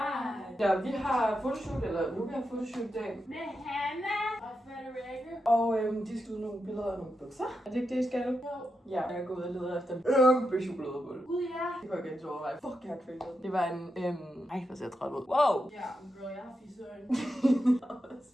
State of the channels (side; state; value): both; normal; correlation 0.86